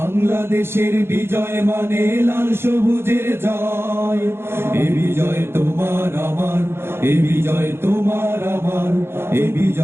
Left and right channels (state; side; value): late; left; 0.12 ms